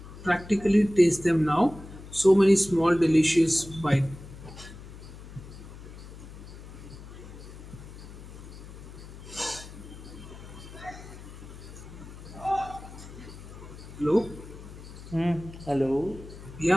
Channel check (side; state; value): left; noise; hum, 15 dB below the sound